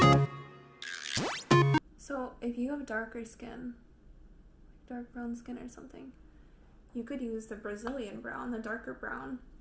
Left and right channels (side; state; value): both; identical; correlation 1.00